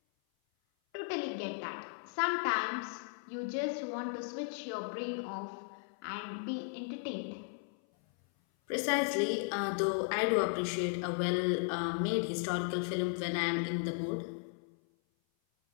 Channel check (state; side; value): silent; right; 54 dB below the other